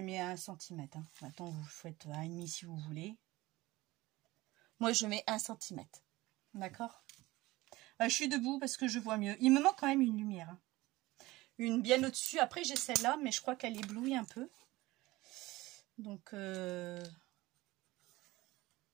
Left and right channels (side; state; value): left; quieter; 19.5 dB